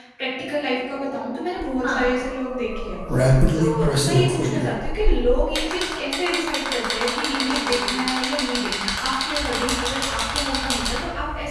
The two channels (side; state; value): both; identical; correlation 1.00